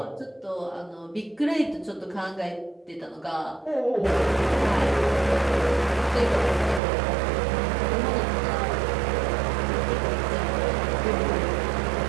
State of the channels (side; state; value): left; drops out; at 6.8 s